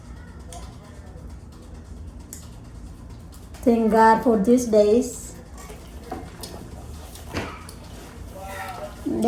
Thank God for these days. And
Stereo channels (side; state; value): both; identical; correlation 1.00